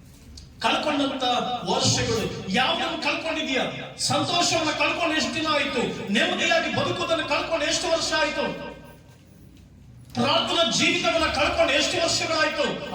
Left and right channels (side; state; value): both; identical; correlation 1.00